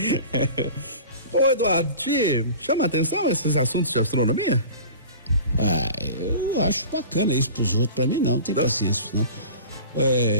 Ô, Eduardo, te chama a atenção esses assuntos de astronomia? Eu acho bacana isso pros outros, pra mim não tem paciência, não.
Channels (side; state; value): both; inverted; correlation -0.39